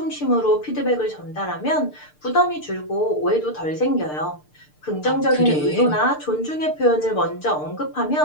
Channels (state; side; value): late; right; 6.6 ms